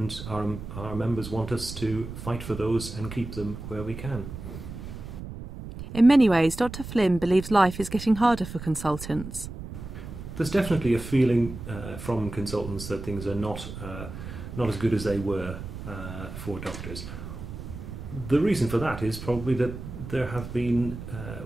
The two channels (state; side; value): noise; right; rumble, 10 dB below the sound